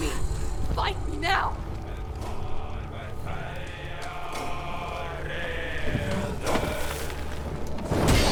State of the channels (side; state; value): both; identical; correlation 1.00